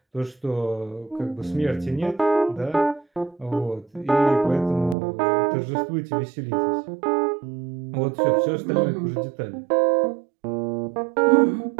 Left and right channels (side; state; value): left; drops out; at 5.0 s